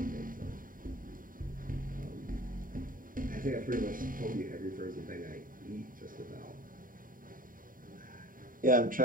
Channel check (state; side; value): late; left; 0.40 ms